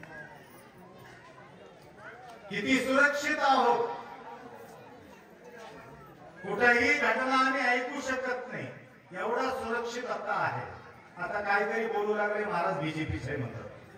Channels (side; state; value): both; identical; correlation 1.00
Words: किती सुरक्षित आहोत, कुठेही घटना आम्ही ऐकू शकत नाही, एवढा सुरक्षित आता आहे. आता काहीतरी बोलू लागले महाराज बीजेपीचे